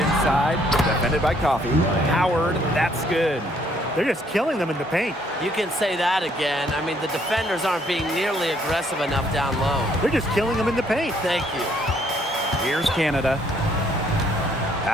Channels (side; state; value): both; normal; correlation 0.66